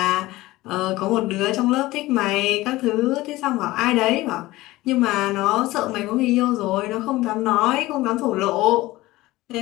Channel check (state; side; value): quieter; right; 18.4 dB